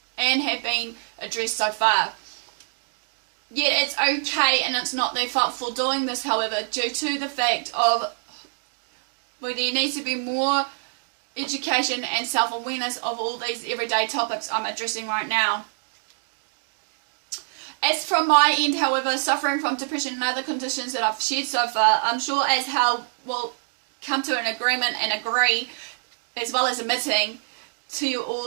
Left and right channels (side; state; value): left; silent; 62 dB below the other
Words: been addressed so far. Yet it's okay and it's not their fault for doing this, however, due to the fact of there needs to be more education and self-awareness of all these everyday topics I'm addressing right now. As from my end, however, suffering from depression and other conditions that I've shared so far, I'm sure as how we'll come to an agreement and agree, as well as admitting to you